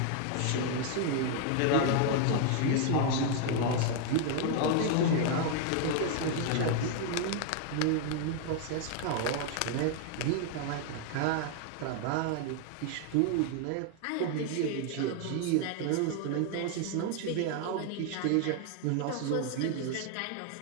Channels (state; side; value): different; both; correlation 0.00